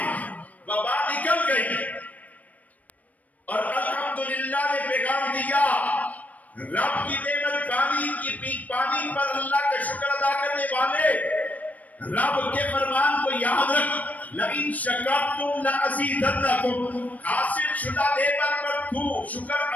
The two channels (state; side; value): late; right; 0.073 ms